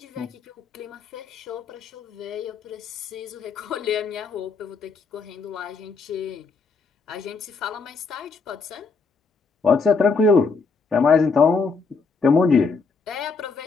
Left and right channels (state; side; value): quieter; right; 4.6 dB